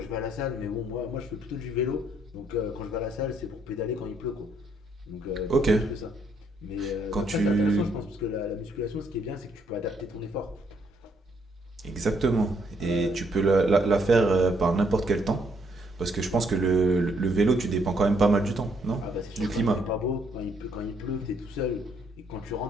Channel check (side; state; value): both; normal; correlation 0.71